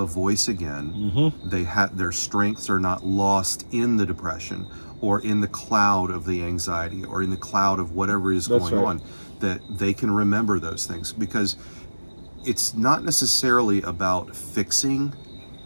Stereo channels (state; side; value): inverted; both; correlation -1.00